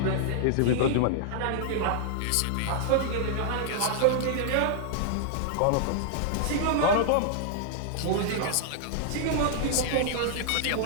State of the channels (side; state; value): both; different; correlation -0.01